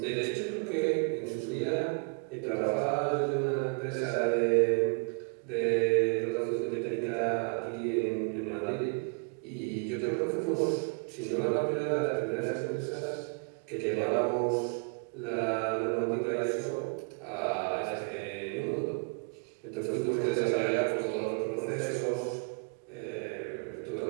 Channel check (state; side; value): quieter; left; 38.4 dB